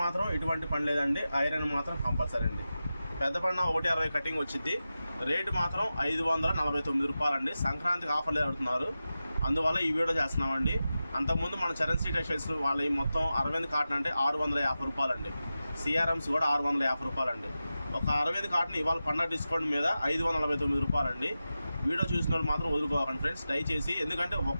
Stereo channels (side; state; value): both; inverted; correlation -0.93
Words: మాత్రం ఎటువంటి పని లేదండి, ఐరన్ మాత్రం కంపల్సరీ అండి. పెద్ద పడిన 160 కటింగ్ వచ్చింది. రేటు మాత్రం 549 రూపాయలండి. సంక్రాంతికి ఆఫర్లు ఆడుతున్నారు, అందువల్ల ఈ వీడియో చేస్తున్నామండి. అంతకుముందు మన చరణ్ టెక్స్టైల్స్ వాళ్ళ మొత్తం అరవింద్ కాటన్ అంటే 650 రూపాయలండి. సిఆర్ఎమ్స్ కూడా 650 రూపాయలండి. ఒక అరవింద్ కాటన్ ఇవాళ పండగ డిస్కౌంట్ మీద 549 రూపాయలండి. వీడియో చూసిన వాళ్ళు మాత్రం వదులుకోకండి ఫ్రెండ్స్, దయచేసి. ఎందుకంటే